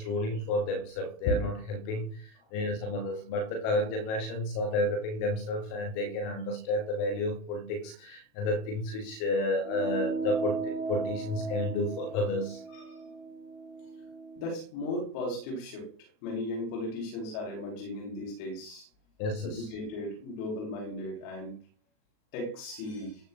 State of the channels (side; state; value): right; late; 37 ms